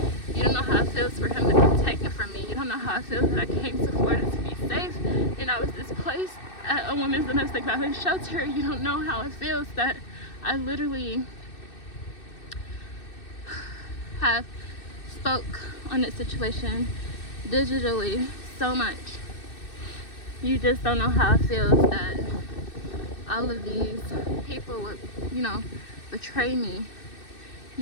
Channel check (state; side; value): late; right; 2.6 ms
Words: You don't know how it feels for him to be taken from me. You don't know how it feels that I came to Florida to be safe and I was displaced at a women's domestic violence shelter. You don't know how it feels that I literally have spoke on this situation digitally so much. You just don't know how it feels that all of these people would, betray me.